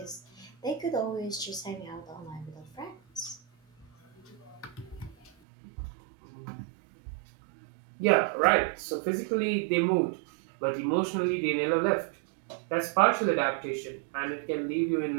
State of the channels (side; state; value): left; drops out; at 5.3 s